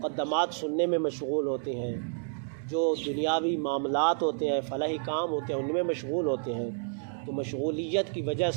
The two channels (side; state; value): left; silent; digital silence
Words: سننے میں مشغول ہوتے ہیں، جو دنیاوی معاملات ہوتے ہیں، فلاحی کام ہوتے ہیں، ان میں مشغول ہوتے ہیں، تو مشغولیت کی وجہ